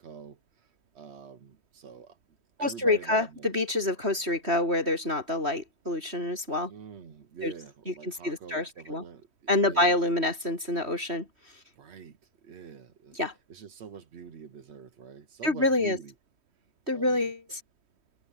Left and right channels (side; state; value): left; late; 3.1 ms